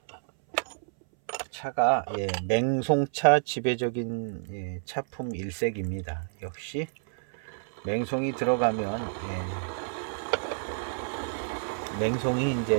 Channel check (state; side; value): silent; left; 58 dB below the other